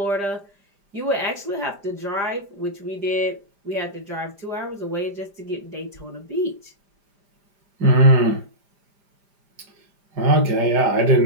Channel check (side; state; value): left; late; 5.0 ms